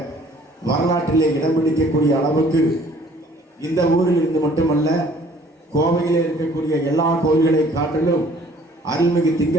வரலாற்றிலே இடம் பிடிக்கக்கூடிய அளவுக்கு இந்த ஊரில் இருந்து மட்டுமல்ல கோவையிலே இருக்கக்கூடிய எல்லா கோயில்களை காட்டிலும் அருள்மிகு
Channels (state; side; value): normal; both; correlation 0.56